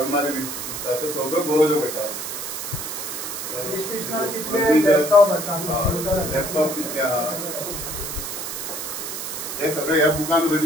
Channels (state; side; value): noise; right; hiss, 6 dB below the sound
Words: दिसता त्यो सगळ्यो बरोवच्यो पडटा लॅपटॉप कितले आहा हे सगळे ह्या बुकान